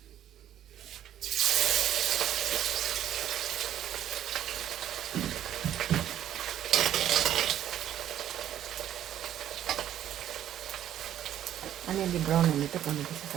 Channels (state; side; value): quieter; left; 11.2 dB